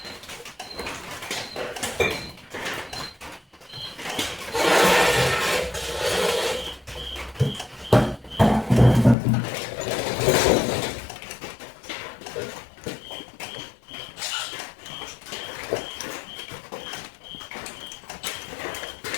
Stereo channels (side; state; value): right; drops out; at 9.2 s